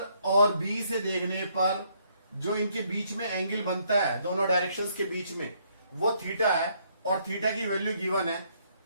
और B से देखने पर जो इनके बीच में एंगल बनता है दोनों डायरेक्शंस के बीच में वो थीटा है और थीटा की वैल्यू गिवन है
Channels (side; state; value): both; inverted; correlation -0.70